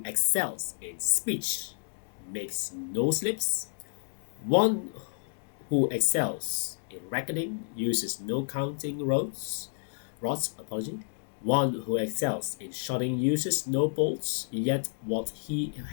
excels in speech makes no slips. One who excels in reckoning uses no counting rods. One who excels in shotting uses no bolts, yet what he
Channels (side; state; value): right; silent; digital silence